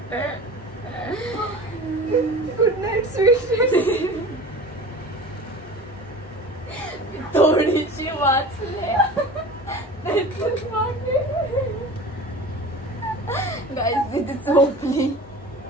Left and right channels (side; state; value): both; normal; correlation 0.37